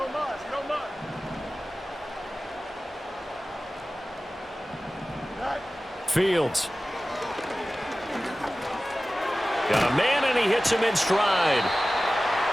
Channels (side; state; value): both; normal; correlation 0.96